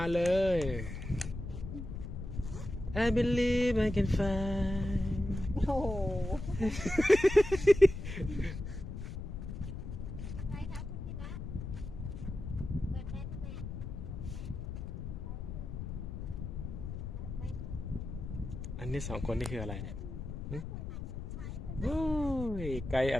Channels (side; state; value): left; noise; rumble, 7 dB below the sound